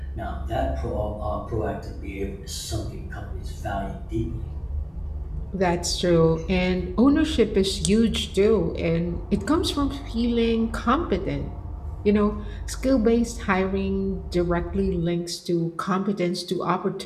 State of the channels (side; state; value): both; identical; correlation 1.00